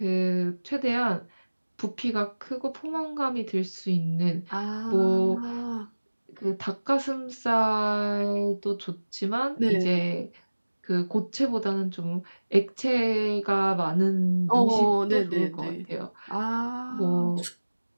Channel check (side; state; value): both; inverted; correlation -1.00